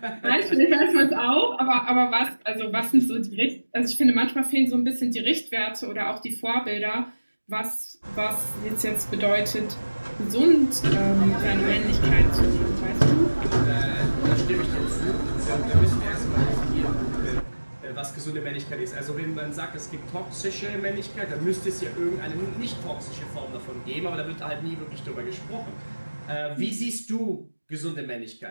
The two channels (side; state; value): both; inverted; correlation -1.00